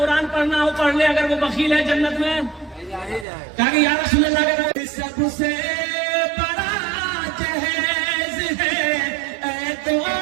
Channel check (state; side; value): drops out; left; at 3.2 s